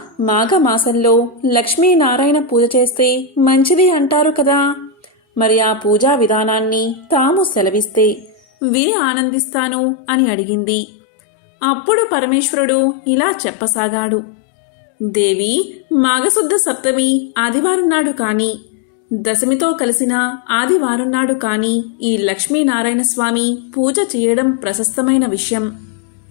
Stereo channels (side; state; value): right; drops out; at 8.4 s